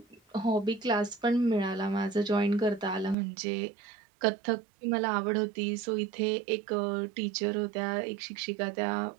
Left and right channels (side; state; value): left; drops out; at 3.2 s